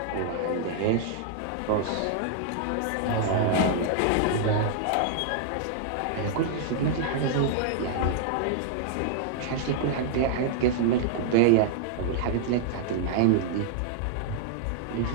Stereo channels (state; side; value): different; both; correlation -0.01